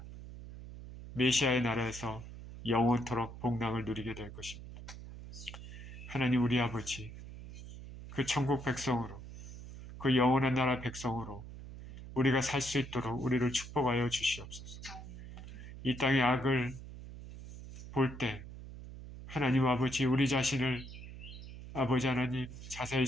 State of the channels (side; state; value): right; noise; hum, 13 dB below the sound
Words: 메시아의 나라에서 영원토록 복락을 누리게 될 것입니다. 하나님 우리 아버지, 그 천국 백성으로, 그 영원한 나라 백성으로 우리가 살 수 있도록 우리를 축복하여 주시옵소서. 이 땅의 악을 볼 때 하나님 아버지, 우리 자신을 아버지 하나님 자세히